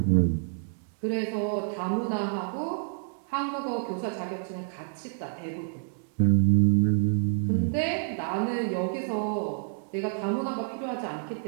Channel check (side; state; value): left; silent; digital silence